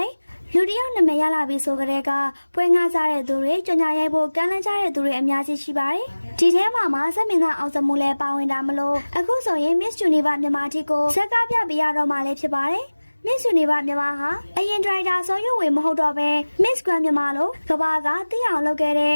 ယ်လူတယောက်နာမည်ရလာပြီးဆိုကြတဲ့ကပွဲငှားကြတဲ့သူတွေကြော်ညာရိုက်ဖို့ကမ်းလှမ်းကြတဲ့သူတွေအများကြီးရှိပါတယ်ဒီထဲမှာစက်မင်းသားအောင်စမှုလည်းပါဝင်တာမလို့အခုဆိုရင် Miss Universe မြန်မာတီကိုဇက်ကားပြပေးရတော့မှလည်းဖြစ်ပါတယ်Miss Universe မြန်မာဟာအရင်ဒရိုက်တာဆိုရွေမဟုတ်တော့ပဲ Miss Grand မြန်မာလို့ကဘာကသိအောင်လုပ်ခဲ့တဲ့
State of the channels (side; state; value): both; inverted; correlation -1.00